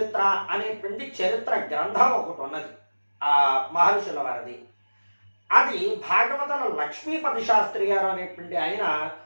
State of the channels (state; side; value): inverted; both; correlation -1.00